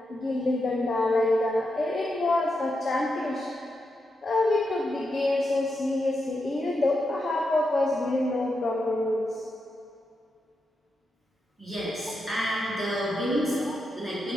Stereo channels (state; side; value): normal; both; correlation 0.86